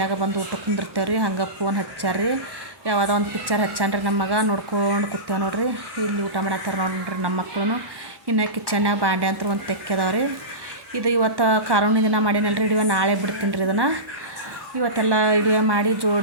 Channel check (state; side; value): late; left; 1.1 ms